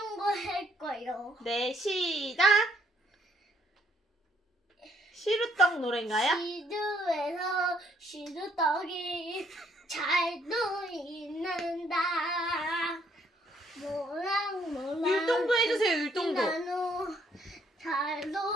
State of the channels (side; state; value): both; normal; correlation 0.68